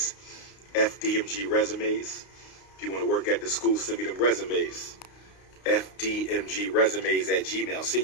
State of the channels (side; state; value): right; late; 32 ms